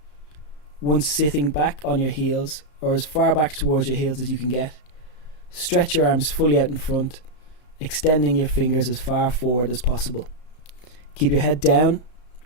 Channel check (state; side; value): late; right; 33 ms